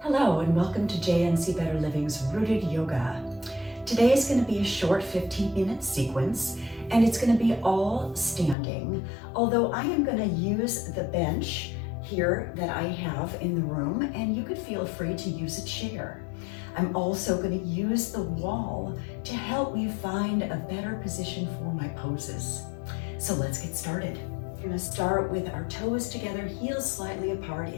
and welcome to JNC Better Living's Rooted Yoga. Today is going to be a short 15-minute sequence and it's going to be all standing, although I am going to use the bench here that I have in the room, and you could feel free to use a chair. I'm also going to use the wall to help me find a better position for my poses. So let's get started. We're going to start with our toes together, heels slightly apart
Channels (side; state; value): right; drops out; at 8.6 s